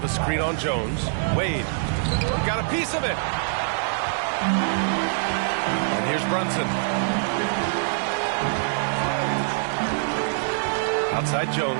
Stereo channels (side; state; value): left; silent; digital silence